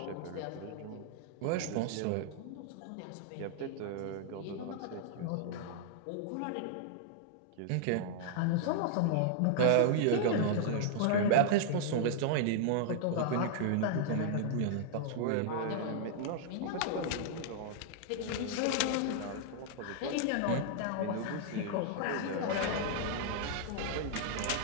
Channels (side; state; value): both; different; correlation -0.01